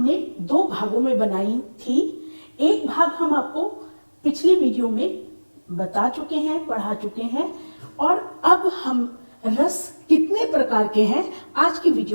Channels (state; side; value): inverted; both; correlation -1.00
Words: दो भागों में बनाई थी। एक भाग हम आपको पिछली वीडियो में बता चुके हैं, पढ़ा चुके हैं, और अब हम रस कितने प्रकार के हैं आज की